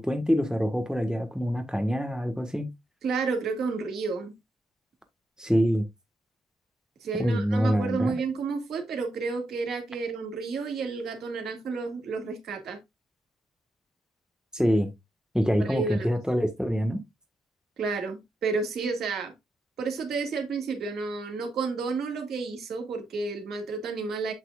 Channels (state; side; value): normal; both; correlation 0.85